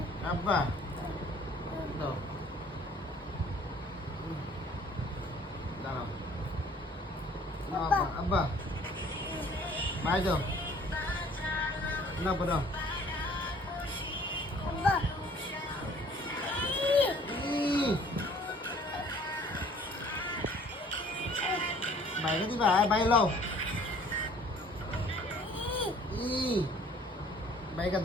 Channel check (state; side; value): normal; both; correlation 0.54